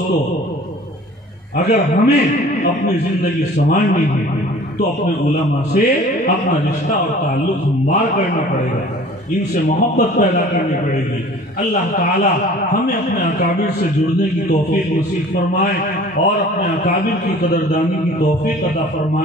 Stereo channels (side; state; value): both; normal; correlation 0.47